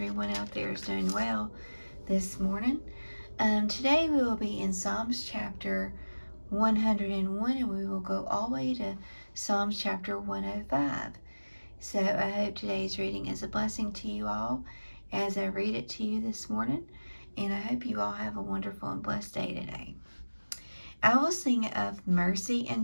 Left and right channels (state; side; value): inverted; both; correlation -1.00